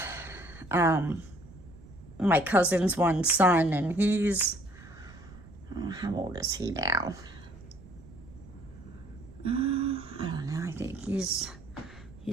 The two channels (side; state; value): right; noise; rumble, 19 dB below the sound